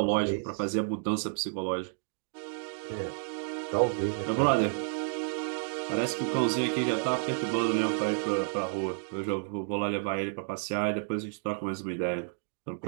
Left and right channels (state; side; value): silent; left; digital silence